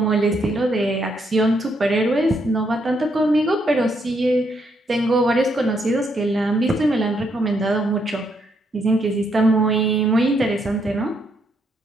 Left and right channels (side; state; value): both; normal; correlation 0.75